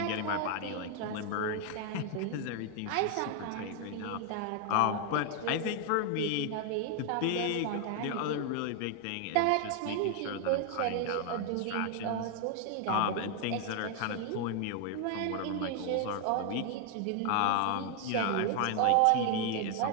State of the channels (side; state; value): both; different; correlation 0.00